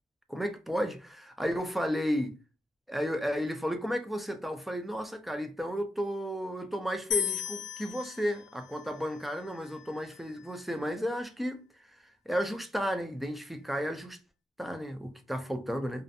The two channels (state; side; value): normal; both; correlation 0.85